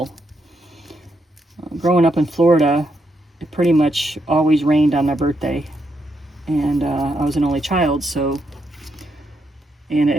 Growing up in Florida, it pretty much always rained on my birthday. And I was an only child, and an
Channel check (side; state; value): both; normal; correlation 0.80